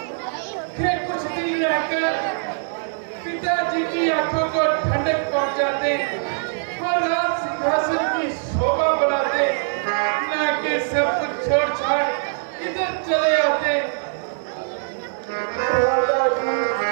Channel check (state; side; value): silent; left; digital silence